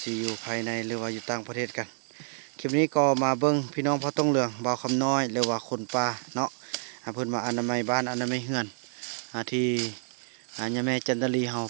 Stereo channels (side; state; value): left; silent; 59 dB below the other